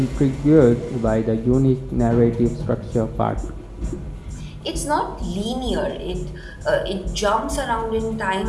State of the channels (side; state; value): both; identical; correlation 1.00